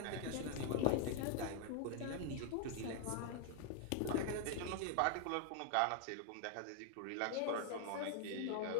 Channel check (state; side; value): different; both; correlation 0.00